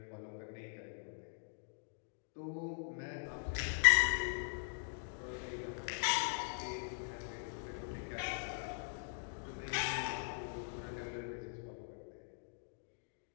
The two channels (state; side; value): silent; right; digital silence